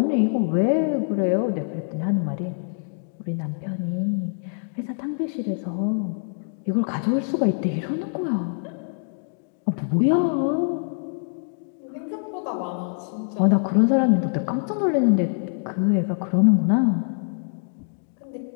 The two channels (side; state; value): right; silent; digital silence